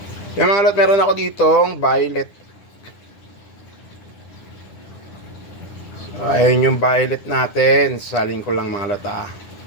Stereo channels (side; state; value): right; late; 9.9 ms